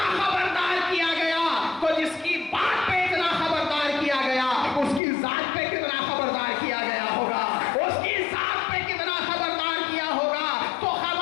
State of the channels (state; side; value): drops out; right; at 5.0 s